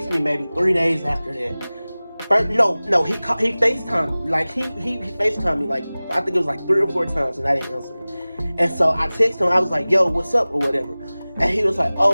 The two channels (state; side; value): inverted; both; correlation -0.99